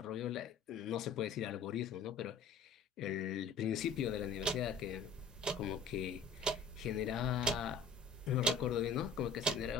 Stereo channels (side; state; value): right; quieter; 4.6 dB